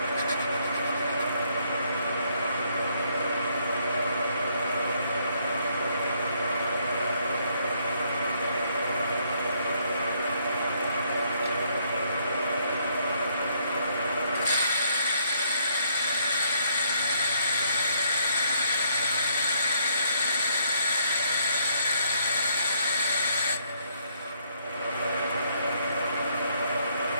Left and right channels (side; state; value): both; inverted; correlation -0.71